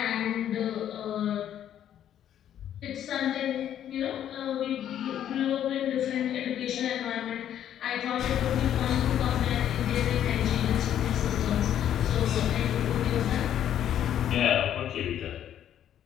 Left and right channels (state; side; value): quieter; right; 10.5 dB